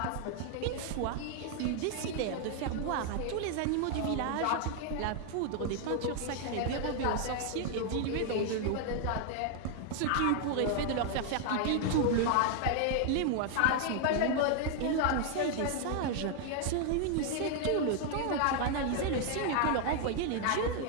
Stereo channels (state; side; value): different; both; correlation 0.00